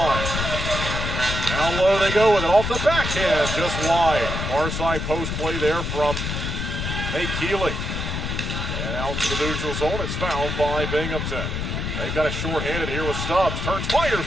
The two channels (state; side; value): noise; left; rumble, 3 dB below the sound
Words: Down low they go with it off the backhand, just wide. Far side post play there from Nate Keeley. And out to the neutral zone, it's fouled by Binghamton. They've got it short-handed here with Stubbs. Turns, fires